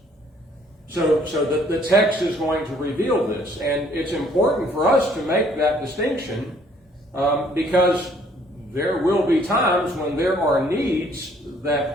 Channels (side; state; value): both; normal; correlation 0.62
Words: So the text is going to reveal this, and it's important for us to make that distinction because there will be times when there are needs